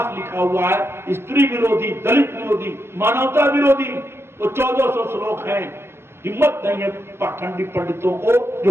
लिखा हुआ है, स्त्री विरोधी, दलित विरोधी, मानवता विरोधी। वो 1400 श्लोक हैं। हिम्मत नहीं है पाखंडी पंडितों को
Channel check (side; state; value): left; late; 0.12 ms